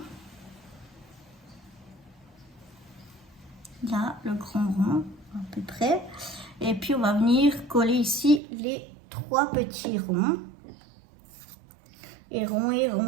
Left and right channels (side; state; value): left; drops out; at 8.4 s